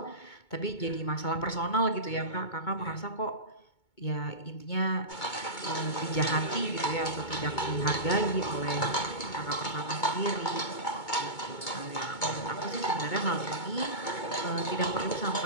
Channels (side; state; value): right; late; 2.2 ms